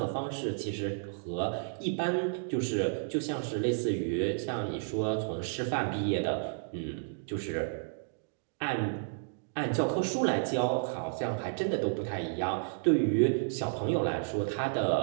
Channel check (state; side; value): silent; left; digital silence